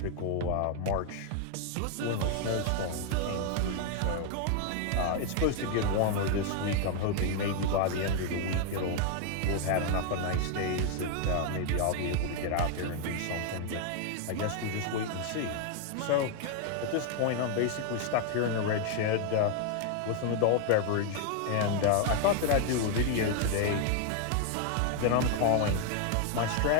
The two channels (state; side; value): different; both; correlation 0.00